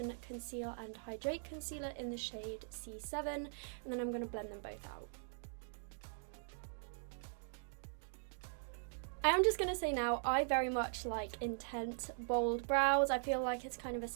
Conceal and Hydrate Concealer in the shade C7, and then I'm going to blend them both out. I am just going to say now, I very much like intense, bold brows. I feel like it's kind of a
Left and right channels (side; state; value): left; silent; digital silence